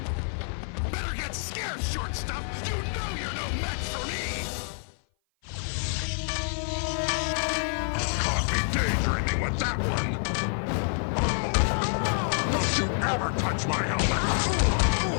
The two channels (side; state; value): right; silent; 56 dB below the other